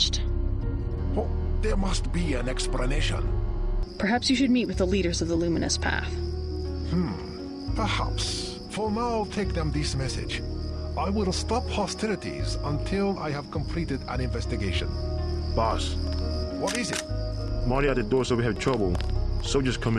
Oh, there must be an explanation. Perhaps you should meet with the leaders of the Luminous Path. Perhaps. For now, take them this message. I will stop hostilities until I have completed an investigation. Boss. What is it? Marty at the door said we have trouble. Soldiers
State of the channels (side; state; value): both; identical; correlation 1.00